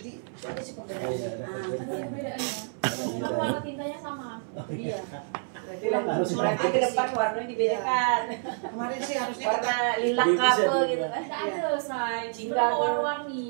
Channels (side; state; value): left; silent; 59 dB below the other